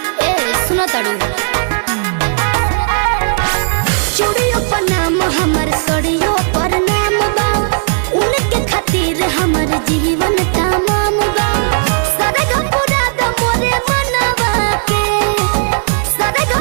ए सुनो तड़ू, चूड़ियों पर नाम हमार सड़ियों पर नाम बा, उनके खातिर हमार जीवन तमाम बा।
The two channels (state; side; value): silent; left; digital silence